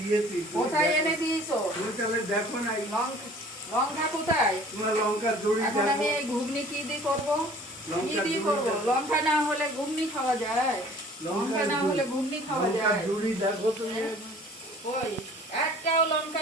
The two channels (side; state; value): both; normal; correlation 0.50